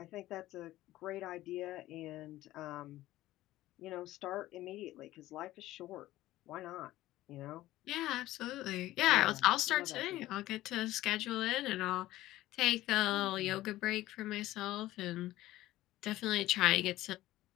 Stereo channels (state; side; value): quieter; right; 15.8 dB